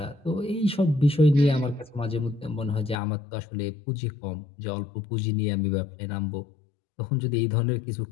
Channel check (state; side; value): drops out; right; at 3.0 s